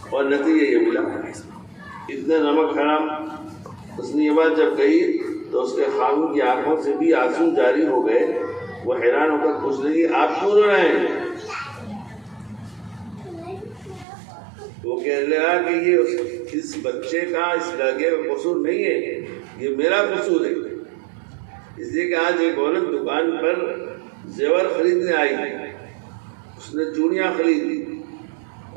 اور نتیجہ یہ ملا، اتنا نمک حرام۔ اس نے یہ بات جب کہی تو اس کے خاوند کی آنکھوں سے بھی آنسو جاری ہو گئے۔ وہ حیران ہو کر پوچھ لگی آپ کیوں رو رہے ہیں؟ وہ کہنے لگا کہ یہ اس بچے کا، اس لڑکے کا قصور نہیں ہے، یہ میرا قصور ہے۔ اس لیے کہ آج ایک عورت دکان پر زیور خریدنے آئی، اس نے چوڑیاں خریدی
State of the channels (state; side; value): drops out; left; at 14.1 s